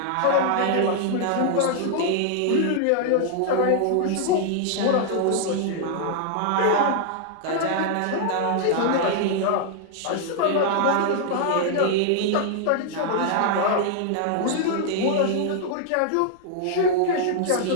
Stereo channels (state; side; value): different; both; correlation -0.01